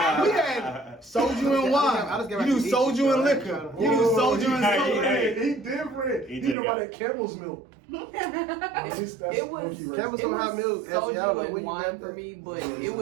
soju and wine. I just get You do back to soju eating, and so liquor. You do Whoa, soju and hey, soda. hey. He different. He He did know about got- that camel's milk. It was Campbell's it don't have was milk. Y'all know soju where and you wine got for that? me, but it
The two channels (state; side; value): drops out; left; at 6.6 s